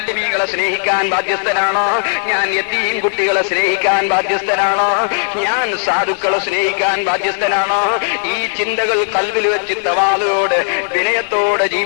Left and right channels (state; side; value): silent; right; 69 dB below the other